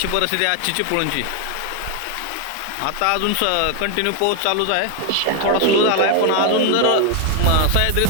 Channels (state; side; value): different; both; correlation 0.01